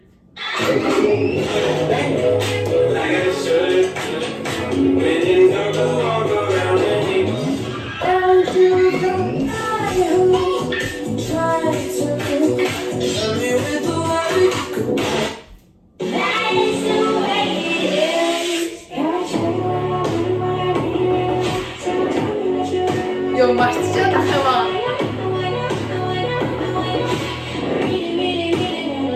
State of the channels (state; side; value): identical; both; correlation 1.00